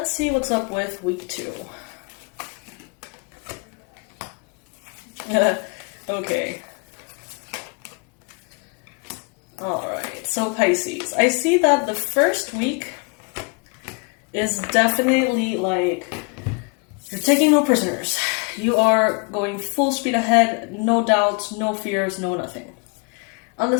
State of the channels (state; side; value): quieter; right; 35.4 dB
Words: see what's up with week 2. Okay. Alright, so Pisces. I see that the first week is definitely like you're taking no prisoners. You are going full speed ahead, no doubts, no fears, no nothing. On the